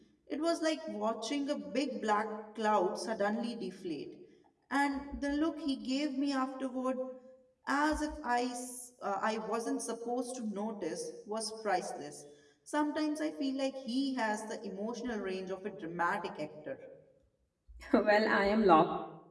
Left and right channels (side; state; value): both; identical; correlation 1.00